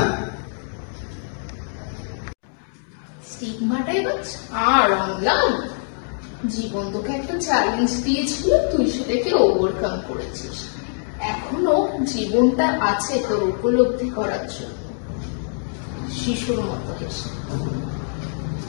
স্টিগমাটা এবার ছাড় অম্লান। জীবন তোকে একটা চ্যালেঞ্জ দিয়েছিল, তুই সেটাকে ওভারকাম করেছিস। এখনো জীবনটা আছে তোর উপলব্ধি করার জন্য। শিশুর মতো হেসে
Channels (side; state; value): right; silent; digital silence